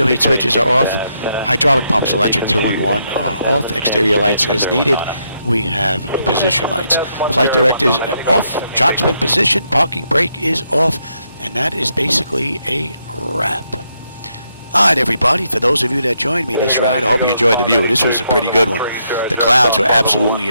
heat switches are off. Hydraulic pumps electric 2 and 1 are off. Exterior lights as needed. We have position lights. Flight directors off. Chocks been positioned. Parking brake is off. And that is basically a wrap. Alright everybody, for those of you that joined me this ride, I hope you enjoyed the view. This was a pretty good one. The clouds were absolutely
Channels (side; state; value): both; inverted; correlation -0.78